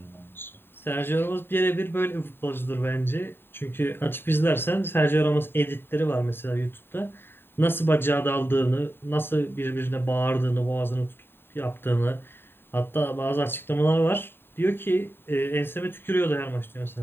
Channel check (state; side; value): late; right; 0.11 ms